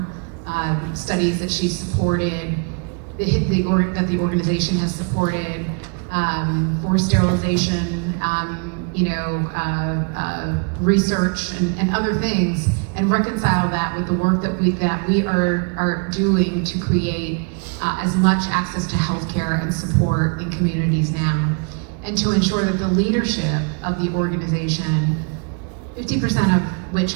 studies that she supported, that the organization has supported, for sterilization, research and other things, and reconcile that with the work that we are doing to create as much access to healthcare and support in communities now. and to ensure that the leadership of the organization, 50% of which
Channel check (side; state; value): left; quieter; 37.6 dB